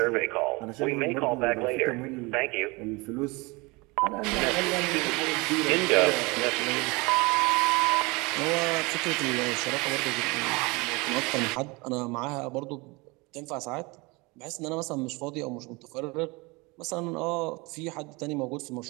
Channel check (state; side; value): quieter; left; 25.8 dB